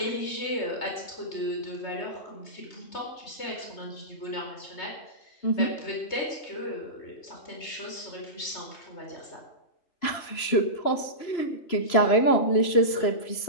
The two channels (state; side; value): late; right; 3.0 ms